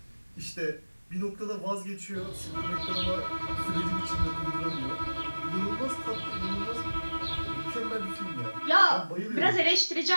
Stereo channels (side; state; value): both; inverted; correlation -1.00